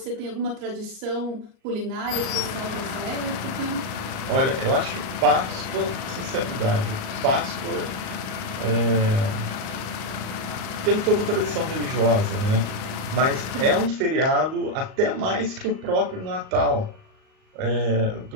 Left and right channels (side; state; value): left; late; 38 ms